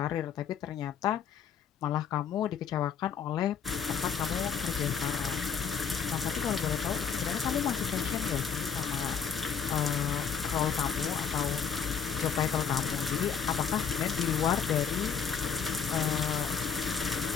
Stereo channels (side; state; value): right; quieter; 7.1 dB